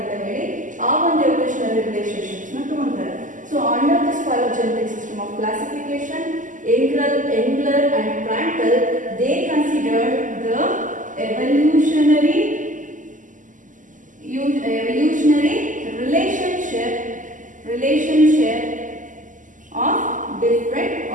ಅಂತ ಹೇಳಿ ಆ ಒಂದು evolutionary relationships ನ ತಗೊಂತಾರೆ. So under this phylogenetic system of classification, Engler and Prandtl, they considered the evolutionary relationship of different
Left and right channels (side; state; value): left; late; 0.37 ms